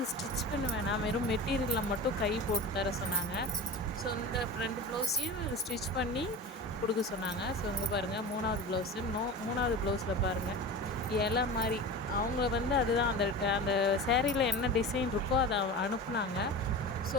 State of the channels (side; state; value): both; normal; correlation 0.31